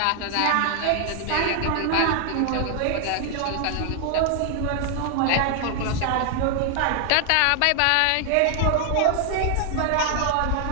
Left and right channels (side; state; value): both; different; correlation 0.00